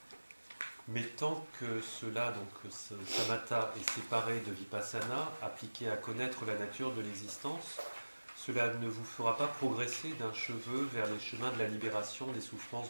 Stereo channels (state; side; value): inverted; both; correlation -1.00